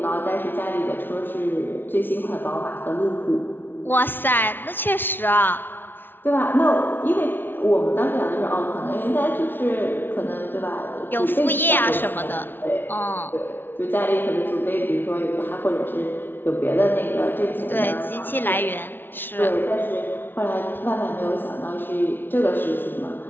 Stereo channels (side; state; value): right; late; 0.098 ms